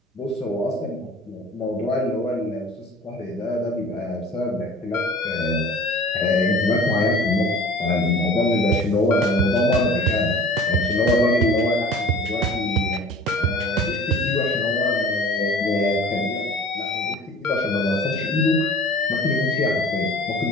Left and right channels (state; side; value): normal; both; correlation 0.44